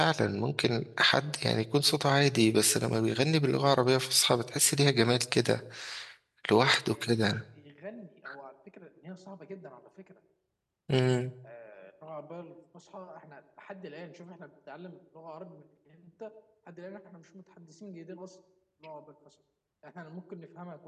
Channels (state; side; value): identical; both; correlation 1.00